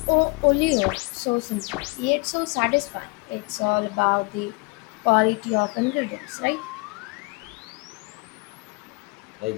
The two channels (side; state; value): right; quieter; 28.8 dB